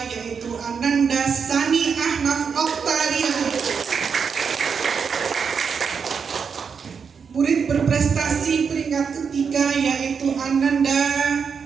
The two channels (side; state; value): left; quieter; 6.2 dB